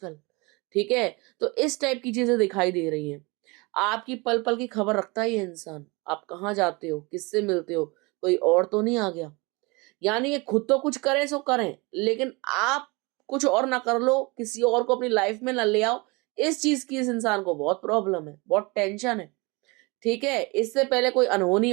ठीक है, तो इस टाइप की चीजें दिखाई दे रही हैं। आपकी पल पल की खबर रखता है ये इंसान, आप कहाँ जाते हो, किससे मिलते हो, कोई और तो नहीं आ गया। यानी ये खुद तो कुछ करें सो करें, लेकिन आप कुछ और ना कर लो, किसी और को अपनी लाइफ में ना ले आओ। इस चीज की इस इंसान को बहुत प्रॉब्लम है, बहुत टेंशन है। ठीक है, इससे पहले कोई अनहोनी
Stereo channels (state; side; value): quieter; left; 26.6 dB